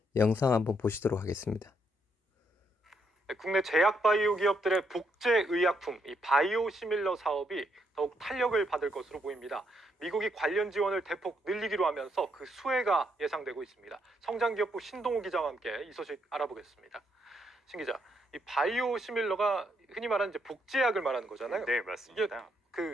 영상 한번 보시도록 하겠습니다. 국내 제약 바이오 기업들의 복제 의약품, 이 바이오시밀러 사업이 더욱 탄력을 받을 것으로 보입니다. 미국이 관련 지원을 대폭 늘리기로 하면서 그 수혜가 예상되고 있습니다. 성장기업부 신동우 기자와 함께 이 소식 알아보겠습니다. 신 기자, 이 바이오시밀러가 흔히 말하는 이제 복제약을 말하는 거잖아요. 네, 이게 맞습니다.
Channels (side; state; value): both; normal; correlation 0.75